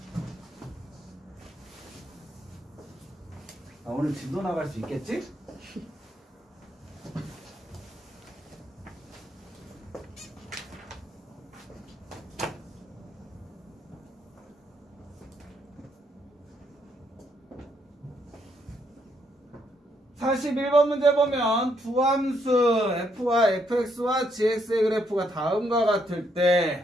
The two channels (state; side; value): normal; both; correlation 0.74